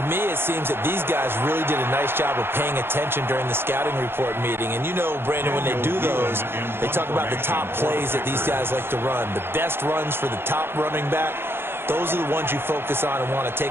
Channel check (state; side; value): late; left; 0.11 ms